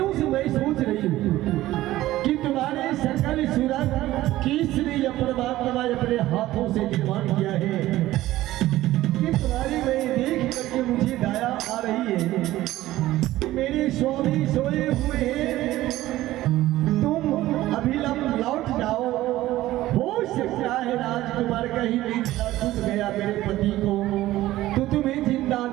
से मैं सोच रही हूँ कि तुम्हारे सकल सूरत किसने या परमात्मा अपने हाथों से निर्माण किया है कि तुम्हारी मैं देख करके मुझे दया आ रही है। मेरे स्वामी सोए हुए हैं, तुम अभिलंब लौट जाओ। हो सकता है राजकुमार कहीं निंदा टूट गया मेरे पति को तो तुम्हें जिंदा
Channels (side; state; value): left; quieter; 15.8 dB